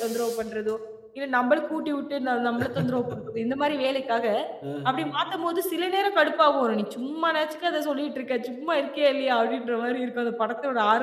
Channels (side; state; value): both; identical; correlation 1.00